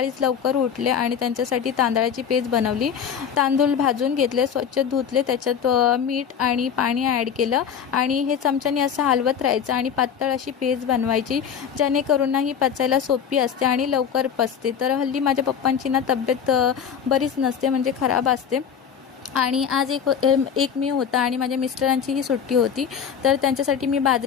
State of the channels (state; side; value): quieter; right; 7.7 dB